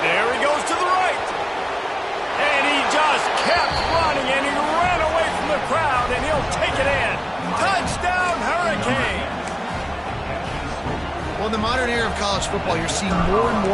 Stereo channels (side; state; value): both; identical; correlation 1.00